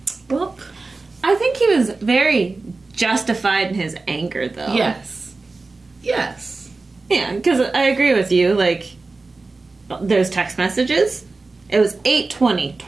well. I think he was very justified in his anger, though. Yes. Yes. Yeah, because I agree with you. Like, those text messages, it was 8:20,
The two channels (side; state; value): left; quieter; 3.6 dB